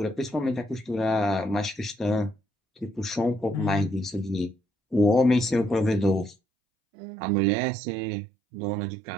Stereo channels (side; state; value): left; drops out; at 6.4 s